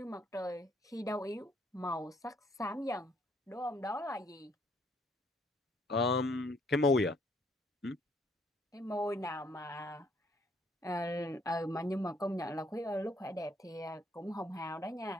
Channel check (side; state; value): both; normal; correlation 0.66